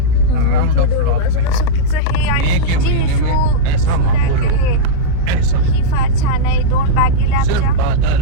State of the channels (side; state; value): both; different; correlation -0.06